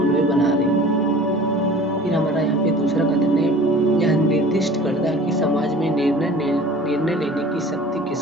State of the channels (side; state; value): both; normal; correlation 0.44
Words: बना रहे। फिर हमारा यहाँ पे दूसरा कथन है, यह निर्दिष्ट करता है कि समाज में निर्णय लेने की शक्ति